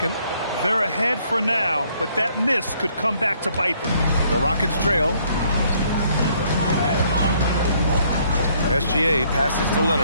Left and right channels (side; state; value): both; inverted; correlation -0.66